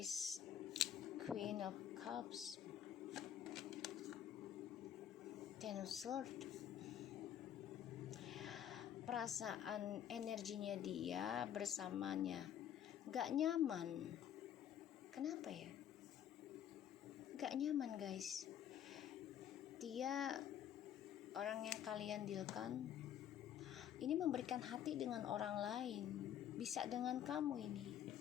Queen of Cups, Ten of Swords. Perasaan energinya dia bersamanya gak nyaman. Kenapa ya? Gak nyaman guys. Dia orang yang kalian dealkan ini memberikan hati dengan orang lain. Bisa dengan kamu ini.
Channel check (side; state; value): right; quieter; 10.1 dB